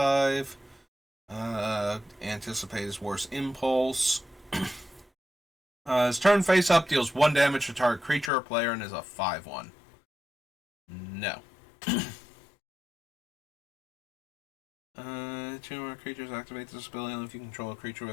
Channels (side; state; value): right; drops out; at 8.3 s